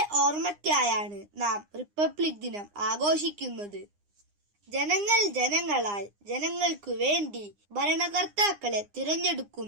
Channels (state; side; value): late; left; 9.8 ms